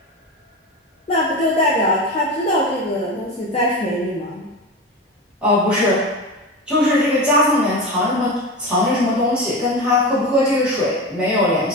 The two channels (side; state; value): both; normal; correlation 0.24